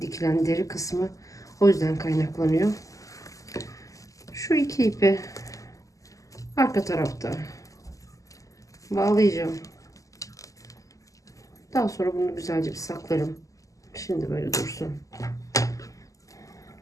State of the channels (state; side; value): late; right; 0.16 ms